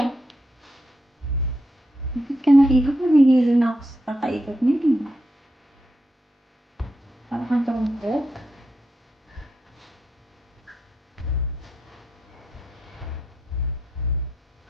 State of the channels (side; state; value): both; normal; correlation 0.83